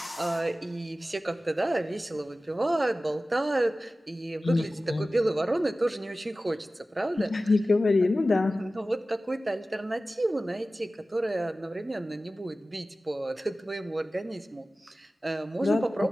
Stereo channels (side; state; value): both; normal; correlation 0.96